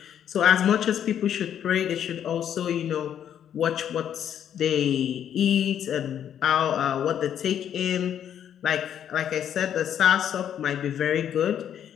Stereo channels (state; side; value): quieter; right; 9.6 dB